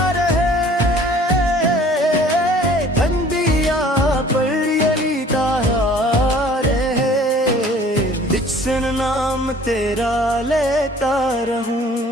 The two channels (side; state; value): both; normal; correlation 0.52